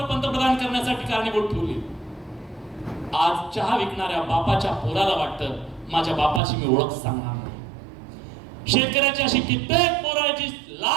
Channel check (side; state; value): left; drops out; at 6.4 s